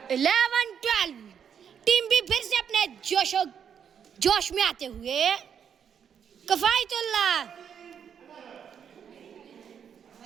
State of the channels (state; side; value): quieter; left; 7.9 dB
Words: 11-12। टीम बी फिर से अपने जोश में आते हुए। कफायतुल्लाह